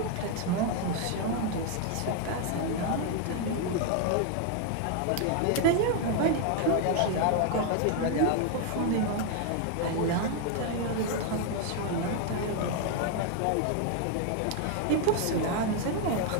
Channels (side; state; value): both; different; correlation 0.01